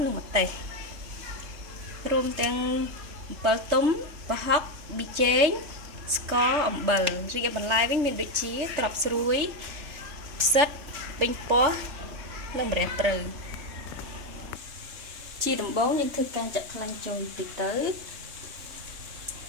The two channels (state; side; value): late; left; 3.3 ms